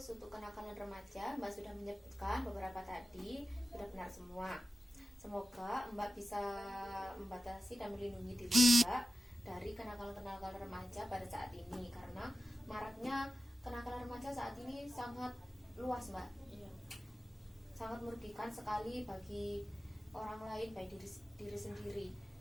untuk kenakalan remaja Mbak sudah menyebutkan beberapa tadi, sudah benar semua. Semoga Mbak bisa membatasi dan melindungi diri Mbak dari kenakalan remaja pada saat ini, karena maraknya kenakalan remaja saat ini sangat luas Mbak. Sangat merugikan sekali bagi orang lain, baik diri sendiri.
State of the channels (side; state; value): both; normal; correlation 0.93